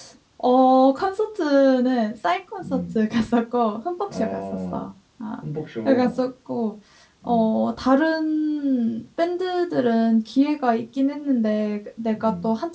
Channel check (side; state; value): both; identical; correlation 1.00